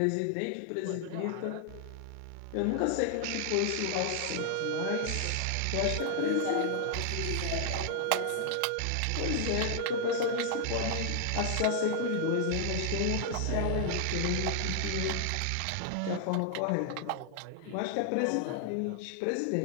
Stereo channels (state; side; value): different; both; correlation 0.00